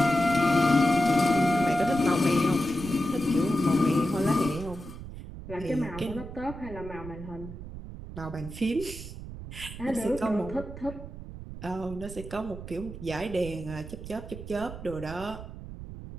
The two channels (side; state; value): right; noise; rumble, 11 dB below the sound